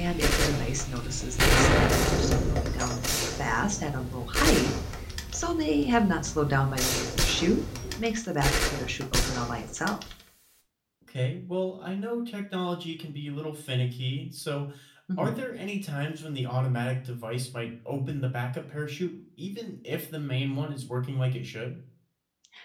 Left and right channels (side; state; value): both; identical; correlation 1.00